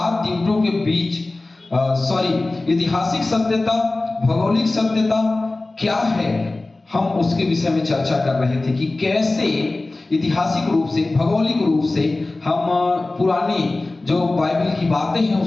दिवसों के बीच ऐतिहासिक सत्यता, भौगोलिक सत्यता क्या है, हम उसके विषय में चर्चा कर रहे थे कि कैसे ऐतिहासिक रूप से, भौगोलिक रूप से हम पुरानी जो बाइबल की बातें हैं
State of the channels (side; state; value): right; quieter; 3.1 dB